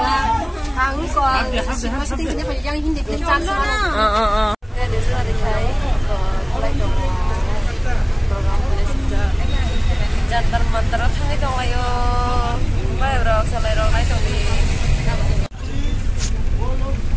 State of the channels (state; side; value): identical; both; correlation 1.00